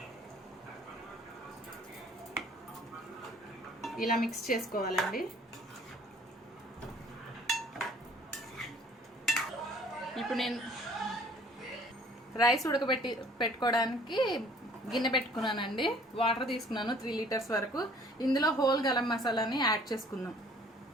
ఇలా మిక్స్ చేసుకోవాలండి. ఇప్పుడు నేను రైస్ పెట్టుకోవడానికి గిన్నె పెట్టుకున్నానండి. వాటర్ తీసుకున్నాను 3 లీటర్స్ వరకు. ఇందులో హోల్ గరం మసాలాని యాడ్ చేసుకుందాం.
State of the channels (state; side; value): normal; both; correlation 0.55